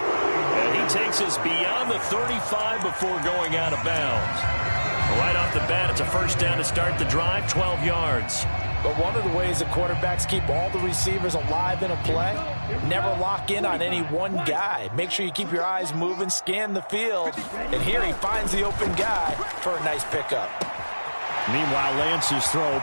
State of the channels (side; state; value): both; inverted; correlation -1.00